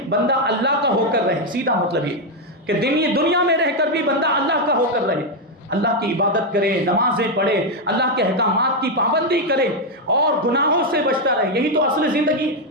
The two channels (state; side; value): normal; both; correlation 0.03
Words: بندہ اللہ کا ہو کر رہے, سیدھا مطلب یہ کہ دنیا میں رہ کر بھی بندہ اللہ کا ہو کر رہے, اللہ کی عبادت کرے, نمازیں پڑھے, اللہ کے احکامات کی پابندی کرے اور گناہوں سے بچتا رہے. یہی تو اصل زندگی,